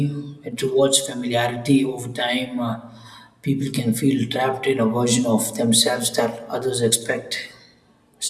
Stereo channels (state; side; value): identical; both; correlation 1.00